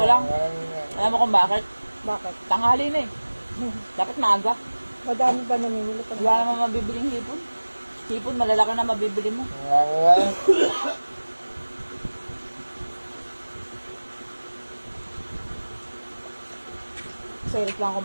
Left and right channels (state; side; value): inverted; both; correlation -1.00